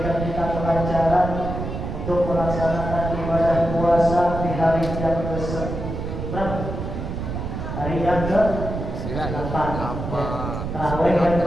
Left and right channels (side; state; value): right; noise; rumble, 5 dB below the sound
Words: kita kelancaran untuk melaksanakan ibadah puasa di hari yang ke-9. Hari yang ke-8. Tarawih yang